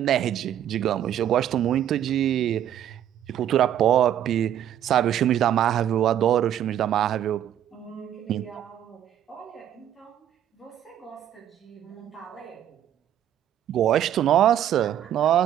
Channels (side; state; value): left; quieter; 10.7 dB